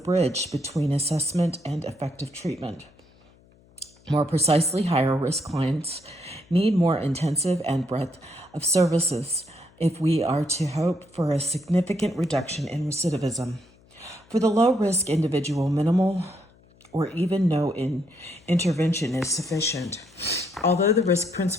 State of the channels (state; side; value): noise; left; hum, 29 dB below the sound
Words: between assessment and effective treatment. More precisely, higher risk clients need more intensive and breadth of services if we are to hope for a significant reduction in recidivism. For the low-risk individual, minimal or even no intervention is sufficient. Although the risk